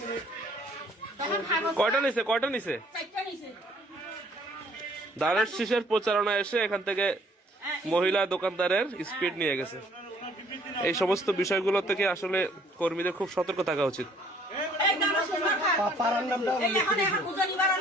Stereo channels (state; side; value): normal; both; correlation 0.59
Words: তখন কয়টা নিছে? চারটা নিছে। দানের শীষের প্রচারণা এসে এখান থেকে মহিলা দোকানদারের স্পিড নিয়ে গেছে। এই সমস্ত বিষয়গুলো থেকে আসলে কর্মীদের খুব সতর্ক থাকা উচিত।